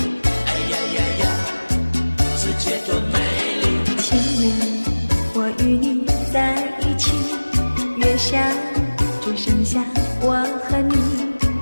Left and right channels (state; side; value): inverted; both; correlation -1.00